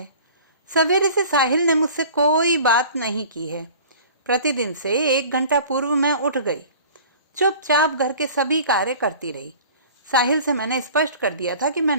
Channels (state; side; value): inverted; both; correlation -0.45